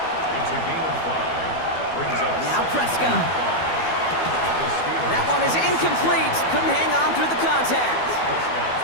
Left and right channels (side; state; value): right; late; 12 ms